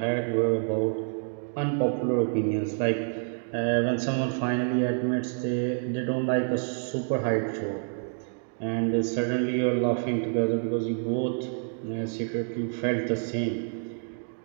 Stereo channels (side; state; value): left; silent; digital silence